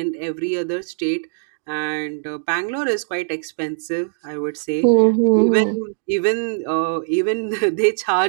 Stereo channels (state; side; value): silent; left; digital silence